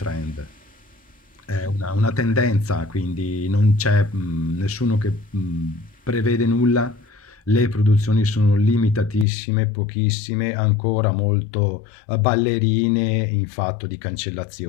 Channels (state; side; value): drops out; right; at 9.2 s